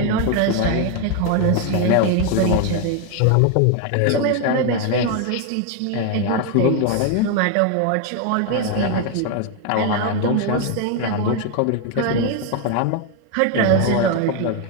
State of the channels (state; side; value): different; both; correlation 0.01